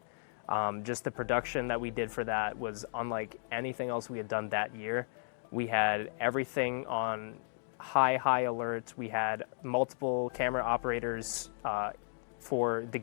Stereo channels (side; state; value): right; silent; digital silence